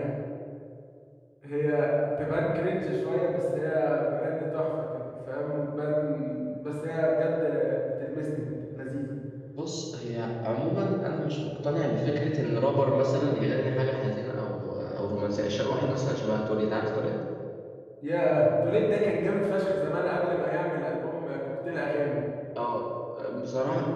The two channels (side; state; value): both; identical; correlation 1.00